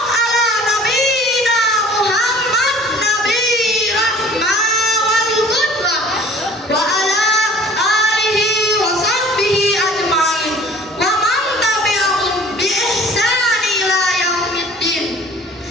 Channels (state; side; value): normal; both; correlation 0.49